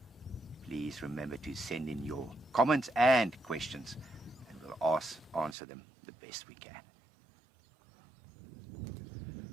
Please remember to send in your comments and questions, and we'll answer them the best we can.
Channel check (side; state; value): left; drops out; at 5.6 s